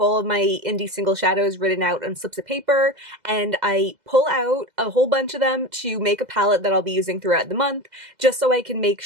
all of my indie single shadows written out on slips of paper, and I pull out a whole bunch of them to make a palette that I'll be using throughout the month, just so I can make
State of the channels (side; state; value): left; late; 2.0 ms